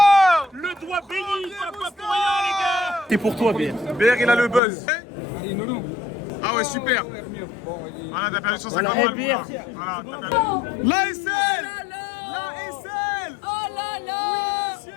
le doigt béni, pas pour rien, les gars. Et pour toi, BR. BR, il a le buzz. Ah ouais, super. Voilà, t'as perdu 150 balles. Voilà, t'as perdu. L'ASL. Oh là là!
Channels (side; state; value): right; drops out; at 4.6 s